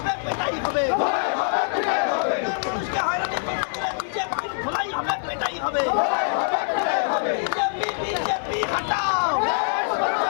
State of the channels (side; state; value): right; silent; 61 dB below the other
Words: পেটাই হবে মানুষকে হয়রানি করতে গেলে বিজেপির ধোলাই হবে পেটাই হবে বিজেপি বিজেপি হটাও